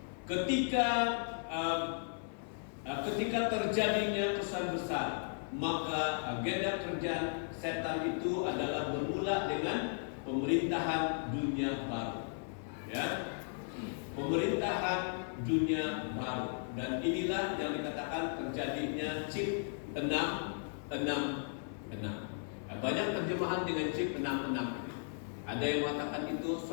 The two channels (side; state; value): right; silent; 54 dB below the other